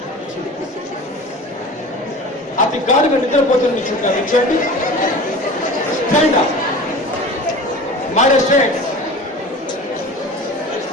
అతి గాఢంగా నిద్రపోతున్న నుంచోండి. Stand up, my dear students,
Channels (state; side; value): normal; both; correlation 0.37